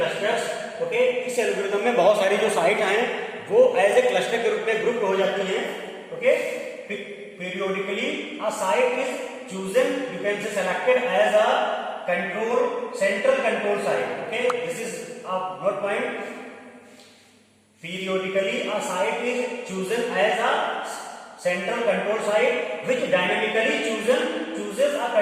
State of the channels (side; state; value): both; identical; correlation 1.00